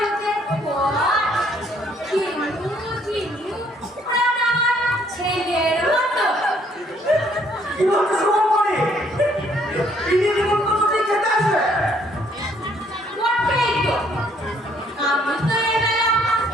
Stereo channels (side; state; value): both; normal; correlation 0.65